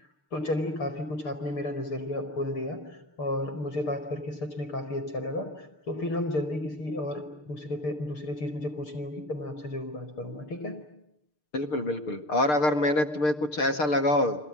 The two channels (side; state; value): right; late; 6.7 ms